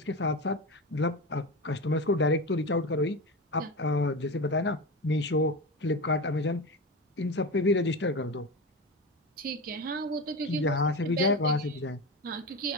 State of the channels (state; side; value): normal; both; correlation 0.23